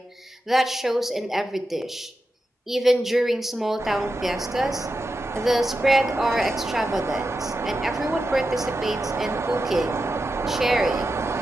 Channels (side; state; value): both; normal; correlation 0.90